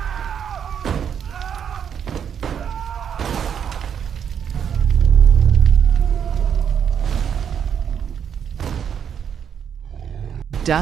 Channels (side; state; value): left; quieter; 8.1 dB